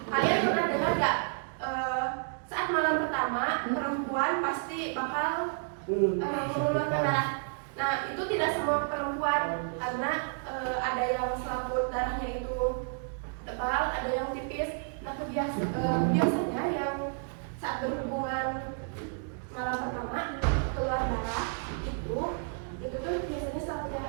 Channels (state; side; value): silent; left; 57 dB below the other